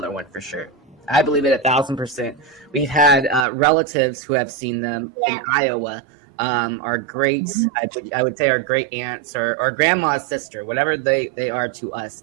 one for sure. I believe it 1,000%. We've had relatives who have seen them in Iowa. Our great, I would say our great aunts or grandma's sister, whatever they are to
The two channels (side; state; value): left; drops out; at 3.5 s